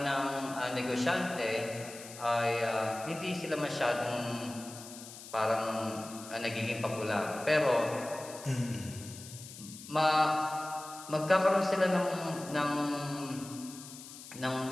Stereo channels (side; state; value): left; noise; hiss, 14 dB below the sound